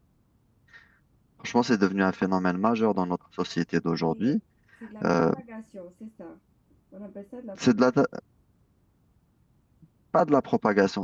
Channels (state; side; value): identical; both; correlation 1.00